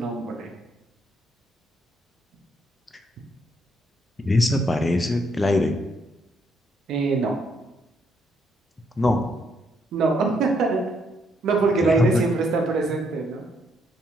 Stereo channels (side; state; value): both; normal; correlation 0.73